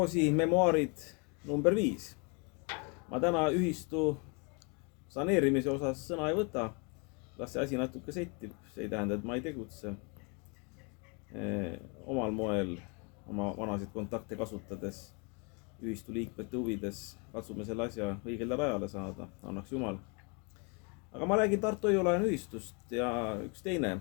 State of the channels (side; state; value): right; quieter; 33.5 dB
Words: memuaarid number 5. Ma täna ühistu saneerimise osas sõna ei võta. Las see asi natuke settib. See ei tähenda, et ma ei tegutse. Omal moel, oma vanasid kontakte kasutades, ühistu liikmete huvides katsume selle asja õigele rajale saada. Annaks Jumal. Aga ma räägin Tartu Hoiu-laenu ühistust ja üks teine